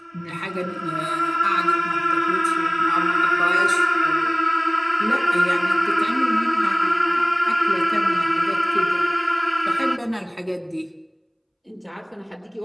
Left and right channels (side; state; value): both; identical; correlation 1.00